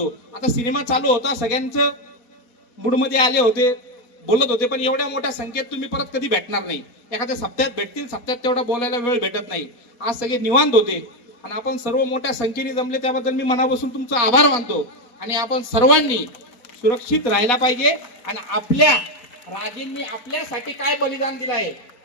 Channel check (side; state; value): right; late; 4.1 ms